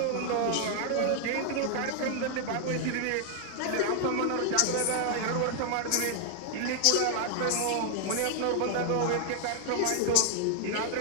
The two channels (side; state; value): both; different; correlation 0.00